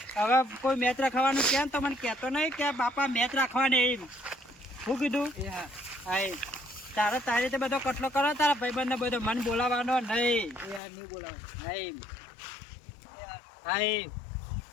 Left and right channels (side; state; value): right; drops out; at 10.8 s